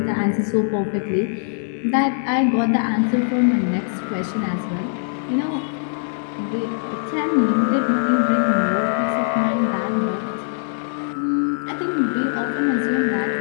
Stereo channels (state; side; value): silent; right; digital silence